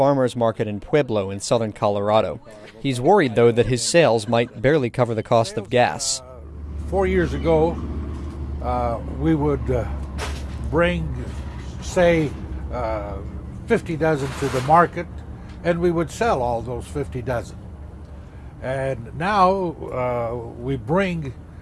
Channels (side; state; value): both; identical; correlation 1.00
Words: market in Pueblo in southern Colorado. He's worried, though, that his sales might barely cover the cost of gas. 4 years ago, we would bring, say, 50 dozen to the market, and we would sell all those 50 dozen. And now we bring,